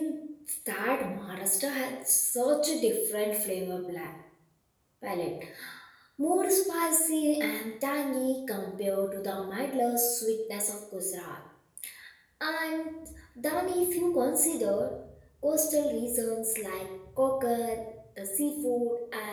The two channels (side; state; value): both; identical; correlation 1.00